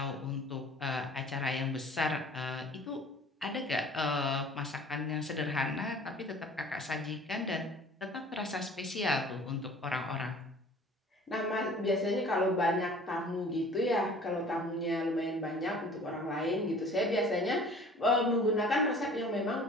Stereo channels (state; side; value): normal; both; correlation 0.48